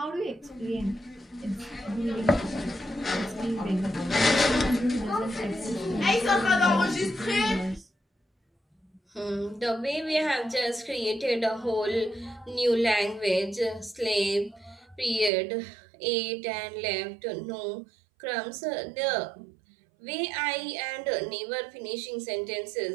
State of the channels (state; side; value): drops out; left; at 15.3 s